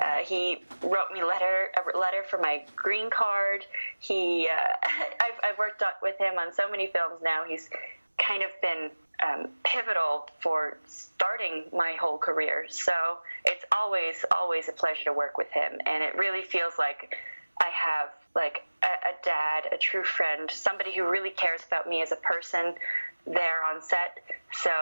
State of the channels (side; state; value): both; inverted; correlation -1.00